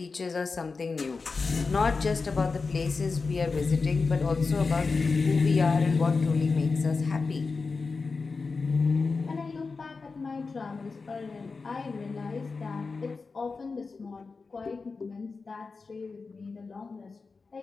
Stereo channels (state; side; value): quieter; right; 4.4 dB